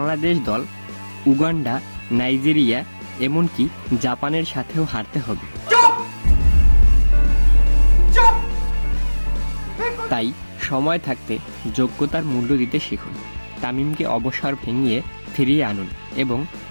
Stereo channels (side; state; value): both; inverted; correlation -1.00